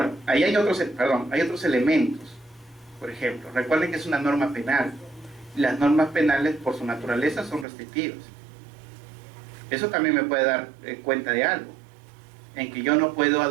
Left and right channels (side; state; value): left; drops out; at 7.7 s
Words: ahí hay otros elementos. Por ejemplo, recuerden que es una norma penal. Las normas penales, por su naturaleza, son restrictivas. Eso también me puede dar cuenta de algo, en que yo no puedo